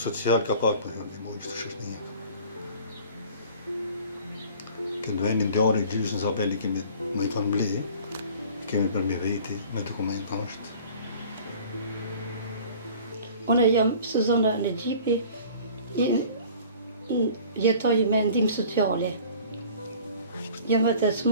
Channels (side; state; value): both; inverted; correlation -0.46